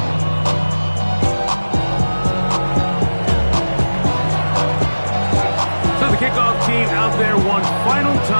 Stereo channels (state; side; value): inverted; both; correlation -1.00